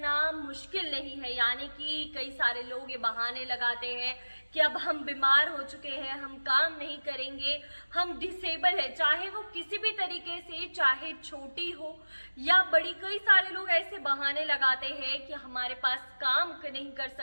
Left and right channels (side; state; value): both; inverted; correlation -1.00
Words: मुश्किल नहीं है। यानी कि कई सारे लोग ये बहाने लगाते हैं कि अब हम बीमार हो चुके हैं, हम काम नहीं करेंगे, हम डिसेबल है, चाहे वो किसी भी तरीके से, चाहे छोटी हो या बड़ी। कई सारे लोग ऐसे बहाने लगाते हैं कि हमारे पास काम नहीं कर